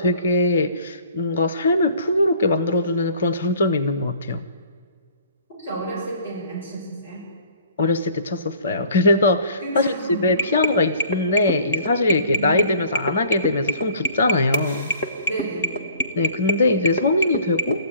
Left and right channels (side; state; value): both; inverted; correlation -0.53